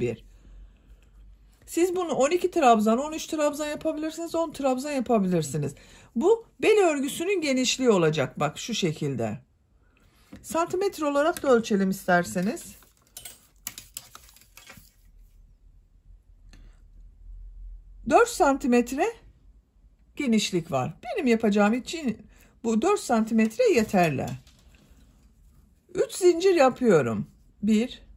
Siz bunu 12 trabzan, 13 trabzan yapabilirsiniz, 10 trabzan yapabilirsiniz. Bu bel örgüsünün genişliği olacak. Bak şu şekilde. Santimetre olarak da ölçelim isterseniz. 4 santimetre genişlik var. Benim yapacağım için bu 4 santimetre yeterli. 3 zincir yapıyorum. 1,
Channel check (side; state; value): both; identical; correlation 1.00